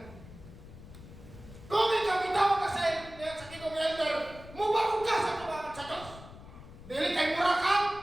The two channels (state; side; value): noise; left; rumble, 17 dB below the sound